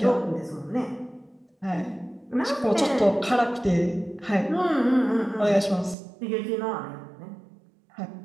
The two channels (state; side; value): drops out; left; at 6.0 s